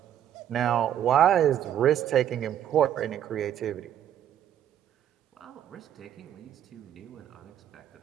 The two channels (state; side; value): quieter; left; 10.4 dB